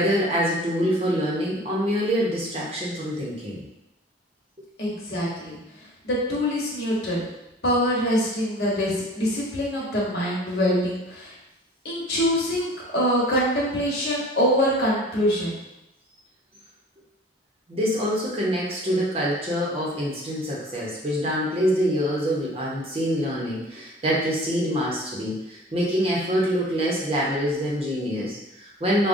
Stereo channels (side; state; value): both; normal; correlation 0.45